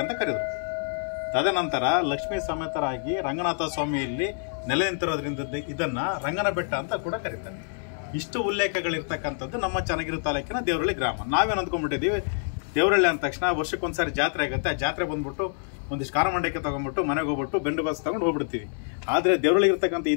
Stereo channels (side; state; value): right; silent; digital silence